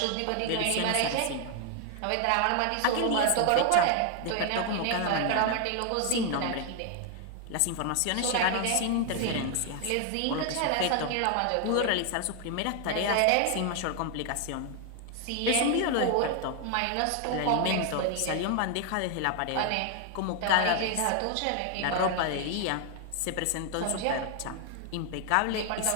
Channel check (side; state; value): both; different; correlation 0.00